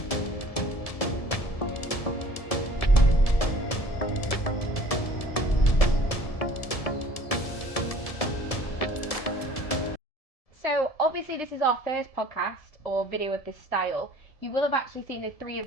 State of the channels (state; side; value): late; right; 1.7 ms